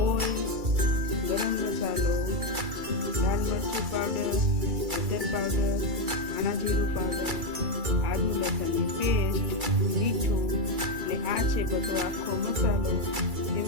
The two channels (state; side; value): late; left; 2.3 ms